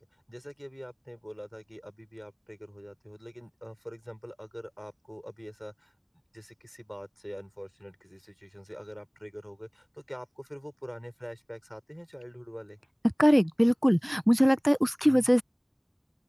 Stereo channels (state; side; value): identical; both; correlation 1.00